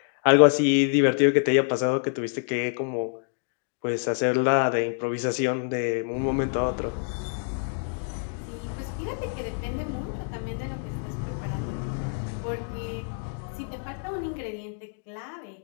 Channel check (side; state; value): right; silent; 60 dB below the other